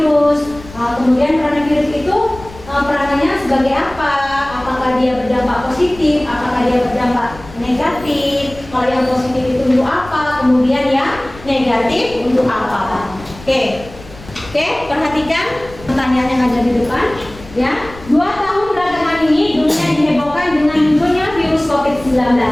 Kemudian peranan virus itu peranannya sebagai apa? Apakah dia berdampak positif? Apakah dia berdampak negatif? Kalau yang positif itu untuk apa? Kemudian yang negatif untuk apa? Oke, perhatikan pertanyaan yang ada di depan, ya. 2 tahun belakangan ini dunia dihebohkan dengan munculnya virus COVID-19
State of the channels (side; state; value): left; noise; rumble, 18 dB below the sound